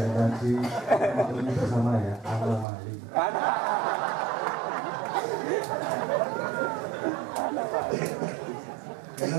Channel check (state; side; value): drops out; left; at 2.7 s